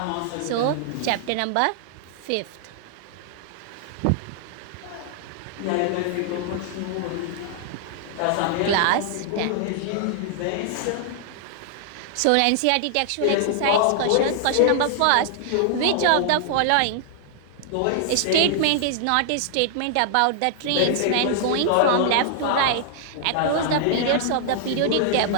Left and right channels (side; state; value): both; different; correlation -0.01